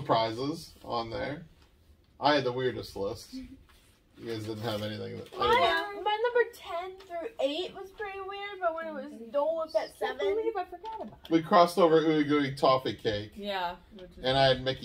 on there. I had the weirdest list. You guys didn't have anything that. My number 10 through 8 was pretty weird, but when it was Dole was at 7. I believe I forgot about it. We crossed over Ooey Gooey Toffee Cake, Yeah. and I had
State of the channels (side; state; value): both; identical; correlation 1.00